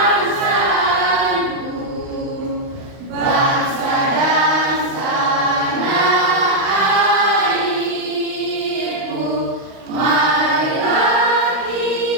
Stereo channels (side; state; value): left; late; 38 ms